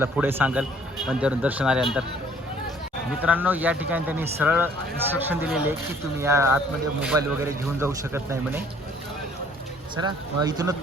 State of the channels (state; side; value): normal; both; correlation 0.58